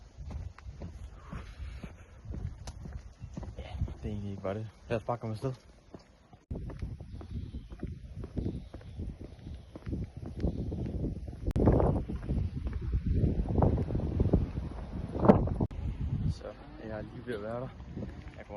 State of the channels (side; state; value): both; identical; correlation 1.00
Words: Det er egentlig ikke bare det. Lad os bare komme afsted. Så jeg er lige ved at være der. Jeg